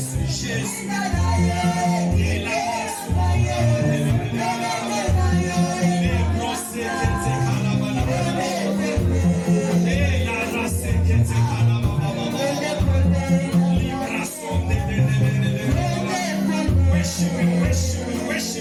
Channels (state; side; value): identical; both; correlation 1.00